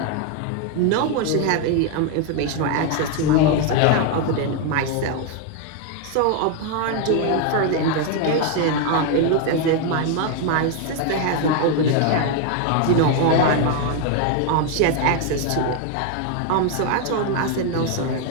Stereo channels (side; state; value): both; different; correlation 0.01